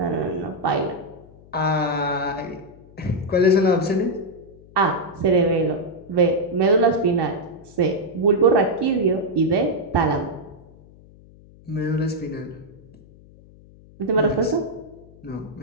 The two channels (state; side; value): noise; left; hum, 24 dB below the sound